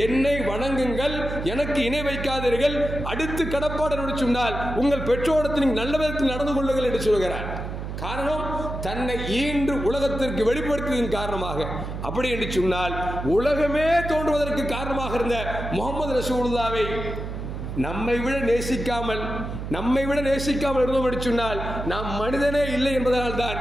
என்னை வணங்குங்கள், எனக்கு இணை வைக்காதீர்கள், அடுத்து கடப்பாடு என்று சொன்னால் உங்கள் பெற்றோரத்தில் நீங்கள் நல்ல விதத்தில் நடந்து கொள்ளுங்கள் என்று சொல்கிறார். காரணம், தன்னை ஈன்று உலகத்திற்கு வெளிப்படுத்தியதன் காரணமாக. அப்படி என்று சொன்னால் உலகமே தோன்றுவதற்கு காரணமாக இருந்த முஹம்மது ரசூலுல்லாஹ்வை நம்மை விட நேசிக்காமல் இருந்தோம் என்று சொன்னால் நாம் மனிதனே இல்லை என்பதனால் தான்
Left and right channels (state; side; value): noise; right; hum, 6 dB below the sound